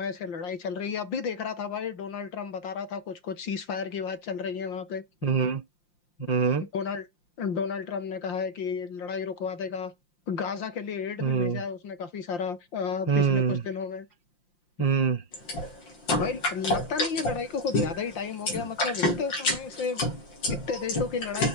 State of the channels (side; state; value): right; late; 5.7 ms